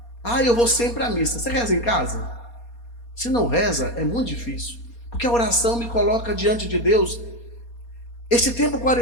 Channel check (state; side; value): late; right; 4.2 ms